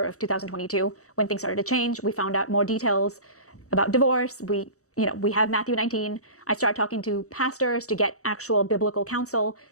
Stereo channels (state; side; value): late; right; 0.65 ms